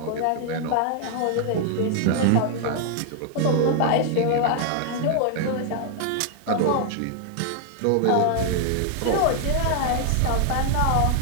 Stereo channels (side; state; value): both; different; correlation 0.00